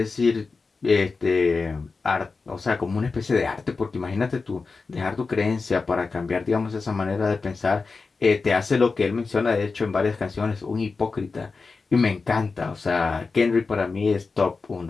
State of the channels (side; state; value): right; quieter; 4.3 dB